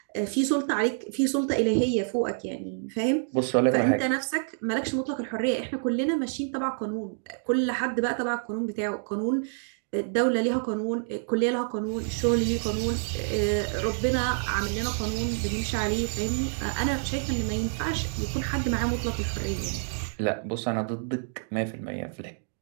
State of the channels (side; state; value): left; silent; digital silence